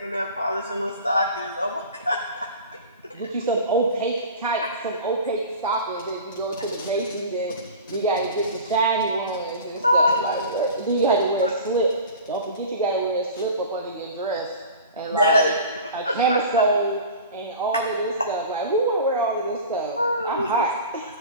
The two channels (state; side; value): inverted; both; correlation -0.37